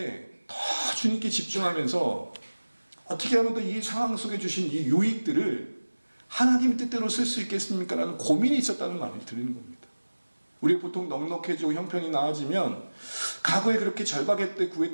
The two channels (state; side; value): inverted; both; correlation -1.00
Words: 더 주님께 집중하면서 어떻게 하면 더 이 상황 속에 주신 이 유익들을 하나님 뜻대로 쓸 수 있겠습니까? 라는 고민이 있었다는 말을 드리는 겁니다. 우리가 보통 넉넉해지고 형편이 나아지면 과거에 그렇게 절박할 때